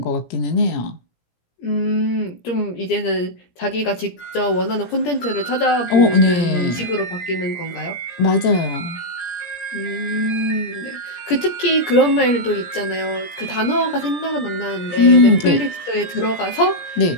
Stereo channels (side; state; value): right; late; 17 ms